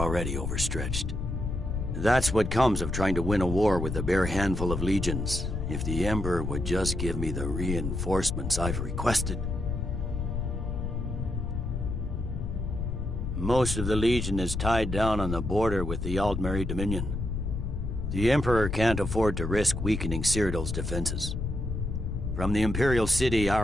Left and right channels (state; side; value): noise; left; rumble, 3 dB below the sound